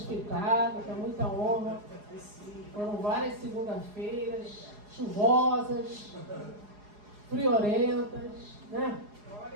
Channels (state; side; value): late; left; 4.8 ms